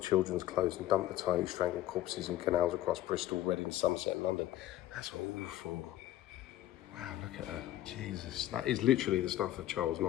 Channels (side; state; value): right; quieter; 13.6 dB